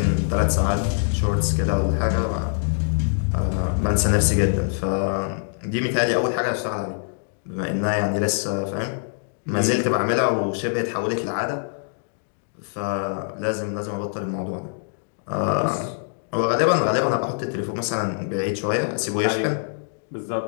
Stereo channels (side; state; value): right; silent; digital silence